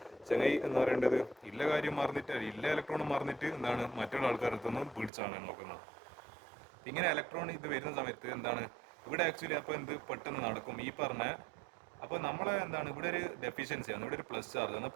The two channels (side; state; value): left; drops out; at 5.1 s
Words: ചങ്ങായി എന്ന് പറയേണ്ടത് ഇല്ല കാര്യം മറന്നിട്ട് ഇല്ല ഇലക്ട്രോണും മറന്നിട്ട് എന്താണ് മറ്റുള്ള ആൾക്കാരടുത്തുനിന്ന് പിടിച്ചാണ് നോക്കുന്നത്. ഇങ്ങനെ ഇലക്ട്രോൺ ഇത് വരുന്ന സമയത്ത് എന്താണ് ഇവിടെ ആക്ച്വലി അപ്പോൾ എന്ത് പെട്ടെന്ന് നടക്കും ഈ പറഞ്ഞ. അപ്പോൾ നമ്മളെ എന്താണ് ഇവിടെ ഒരു ഡെഫിഷ്യൻസി ആണ്, ഇവിടെ ഒരു പ്ലസ് ചാർജ് ആണ്.